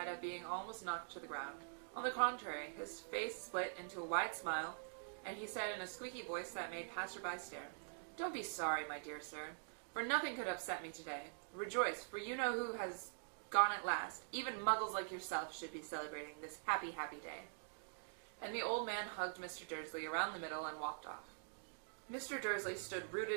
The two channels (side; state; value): left; silent; digital silence